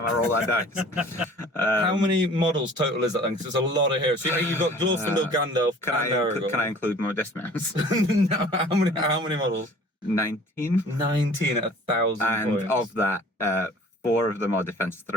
I roll that dice. How many models total is that then? Because there's a lot of heroes. So you've got Glorfindel, Gandalf, Can and Aragorn. I include my dismounts? No, how many models? 19. 19 at 1,000 And points. of that, 4 of them are defense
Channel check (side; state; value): both; normal; correlation 0.48